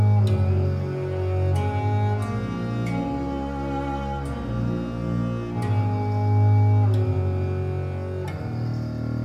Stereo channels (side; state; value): both; identical; correlation 1.00